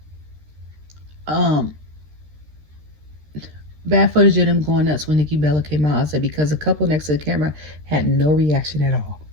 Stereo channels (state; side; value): late; left; 13 ms